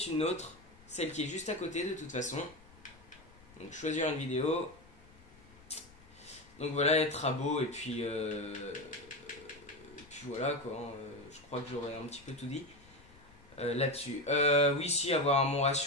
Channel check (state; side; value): noise; left; rumble, 24 dB below the sound